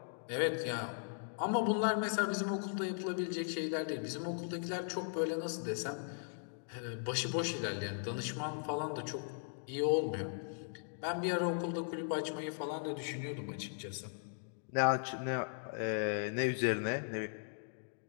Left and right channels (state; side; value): silent; right; digital silence